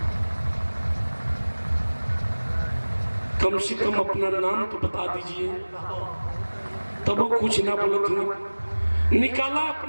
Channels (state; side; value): inverted; both; correlation -1.00